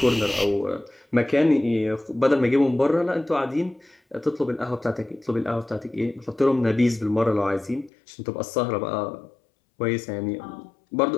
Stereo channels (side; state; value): right; drops out; at 7.9 s